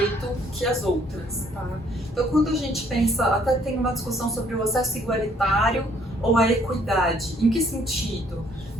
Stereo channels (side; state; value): both; normal; correlation 0.64